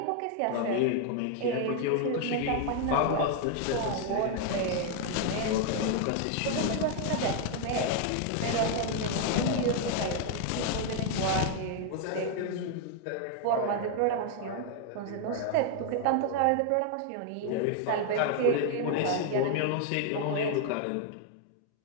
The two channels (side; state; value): both; different; correlation 0.00